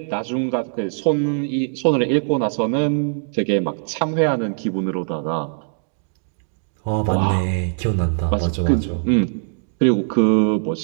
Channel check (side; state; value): left; silent; digital silence